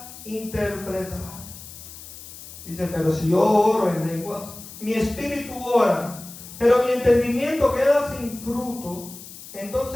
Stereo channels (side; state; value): left; noise; hiss, 15 dB below the sound